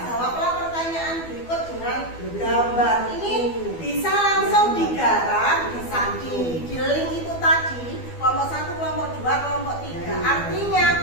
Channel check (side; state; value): right; late; 12 ms